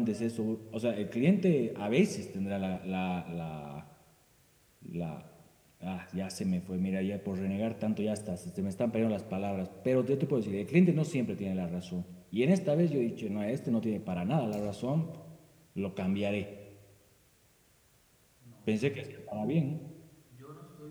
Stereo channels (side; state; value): both; identical; correlation 1.00